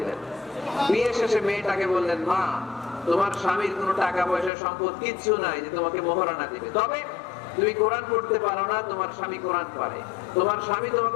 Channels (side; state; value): right; drops out; at 4.5 s